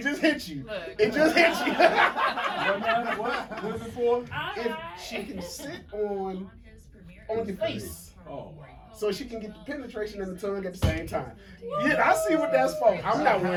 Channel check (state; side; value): identical; both; correlation 1.00